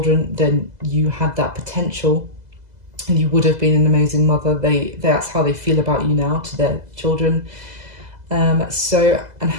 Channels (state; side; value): late; left; 2.0 ms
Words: then you had that potential. And you would have been an amazing mother. That's how they feel about you now to their children. And